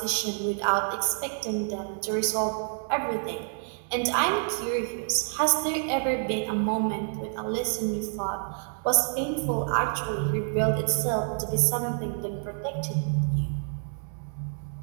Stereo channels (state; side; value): silent; left; digital silence